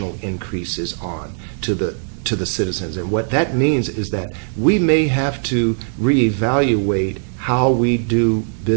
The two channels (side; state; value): left; silent; digital silence